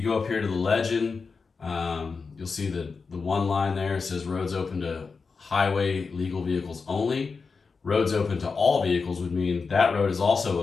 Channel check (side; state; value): right; quieter; 4.8 dB